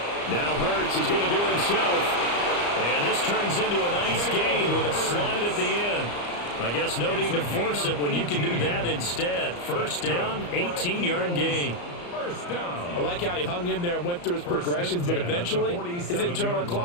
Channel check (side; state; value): right; late; 34 ms